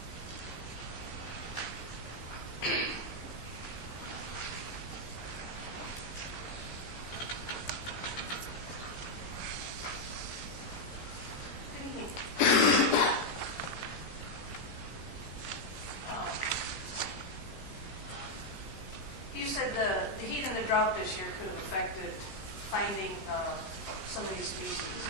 You said the heat and the drought this year could have affected finding some of these species.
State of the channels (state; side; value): late; right; 15 ms